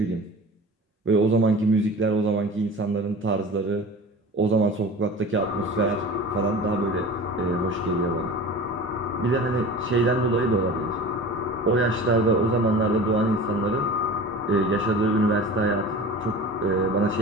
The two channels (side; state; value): both; normal; correlation 0.37